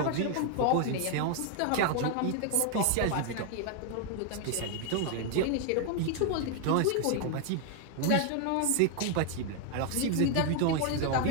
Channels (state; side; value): different; both; correlation 0.00